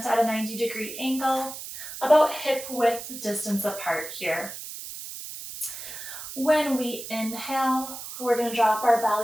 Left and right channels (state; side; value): noise; right; hiss, 10 dB below the sound